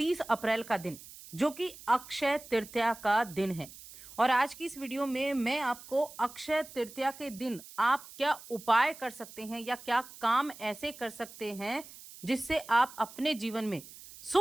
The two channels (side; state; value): right; noise; hiss, 17 dB below the sound